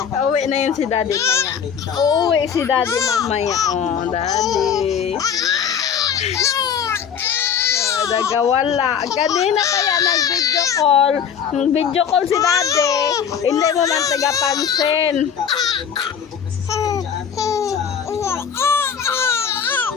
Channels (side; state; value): right; quieter; 7.7 dB